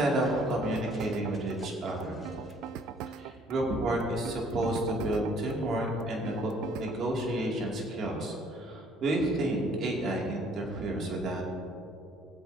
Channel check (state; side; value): normal; both; correlation 0.60